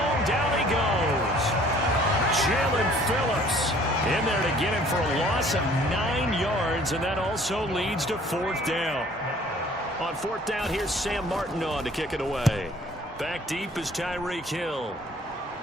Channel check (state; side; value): normal; both; correlation 0.55